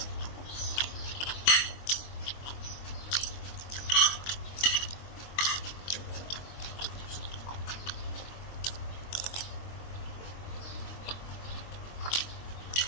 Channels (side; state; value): right; late; 22 ms